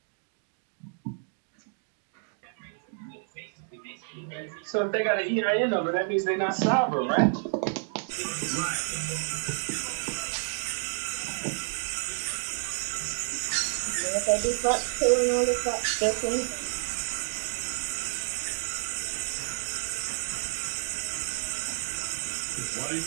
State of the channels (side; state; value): left; silent; digital silence